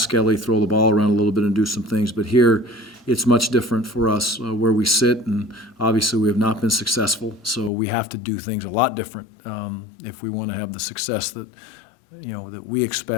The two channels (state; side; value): drops out; right; at 7.7 s